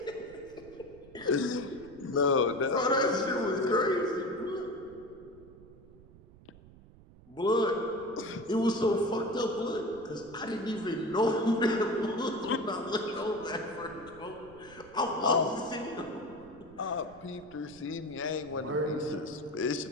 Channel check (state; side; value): noise; right; rumble, 22 dB below the sound